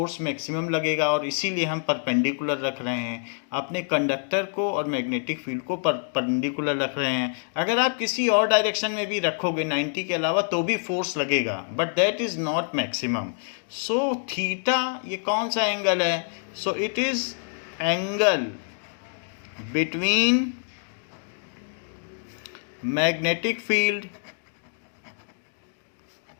मैक्सिमम लगेगा. और इसीलिए हम परपेंडिकुलर रख रहे हैं अपने कंडक्टर को और मैग्नेटिक फील्ड को परपेंडिकुलर रख रहे हैं. अगर आप किसी और डायरेक्शन में भी रखोगे 90 के अलावा तो भी फोर्स लगेगा, but that is not maximum. So theta ये कौन सा एंगल है? सो it is angle between magnetic field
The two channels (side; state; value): right; silent; digital silence